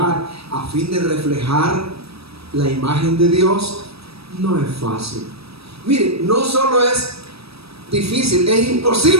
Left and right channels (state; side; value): late; left; 0.77 ms